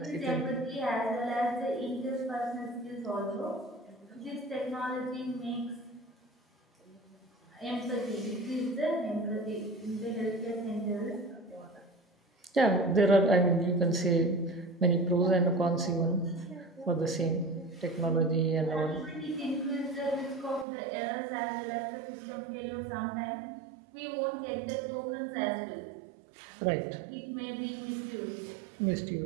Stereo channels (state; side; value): drops out; left; at 20.7 s